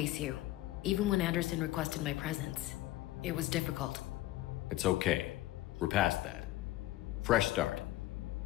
you, even when Anderson requested my presence. It was difficult. It's okay. We're past that. Fresh start.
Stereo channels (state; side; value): quieter; right; 16.4 dB